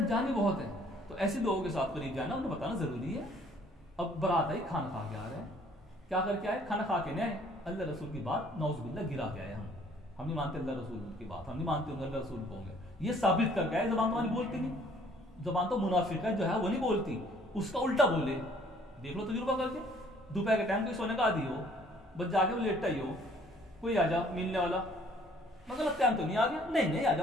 بھی بہت ہیں. تو ایسے لوگوں کے ساتھ قریب جانا, انہیں بتانا ضروری ہے. اب برات آئی, کھانا کھا کے آ رہے ہیں, کیا کر کے آئے, کھانا کھا کے نہیں آئے, اللہ رسول کی بات نعوذ باللہ گرا کے آئے. ہم نہیں مانتے اللہ رسول کی بات, ہم نہیں مانتے اللہ رسول کو ہوں گے, یہ ثابت کر کے آئے. زبان تو ہماری بولتی نہیں, زبان تو منافق ہے جو ہے وہ نہیں بولتی, اس کا الٹا بولے. دیکھ لو تجربہ کر کے, دوپہر کے ٹائم کوئی سونے کا عادی ہو, بس جا کے وہ لیٹا ہی ہو, کوئی آ جا ملنے والا, مگر ٹائم تو نہیں آ گیا, نہیں آ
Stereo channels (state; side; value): normal; both; correlation 0.59